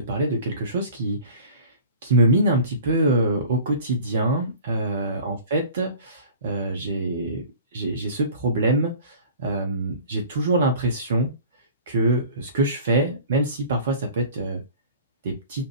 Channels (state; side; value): inverted; both; correlation -0.43